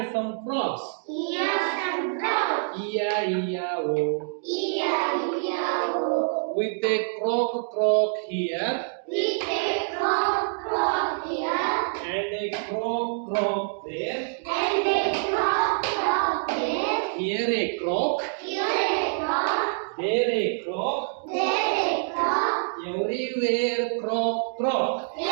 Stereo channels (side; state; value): left; silent; digital silence